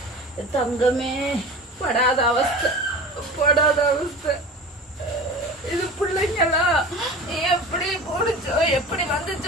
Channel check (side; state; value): both; normal; correlation 0.35